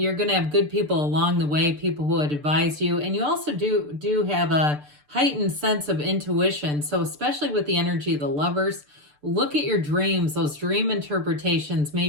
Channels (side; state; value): left; late; 6.8 ms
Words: going to have good people along the way, people who would advise you. And you also do have a heightened sense of intuition. So especially with the energy of the Lovers, look at your dreams. Those dream interpretations may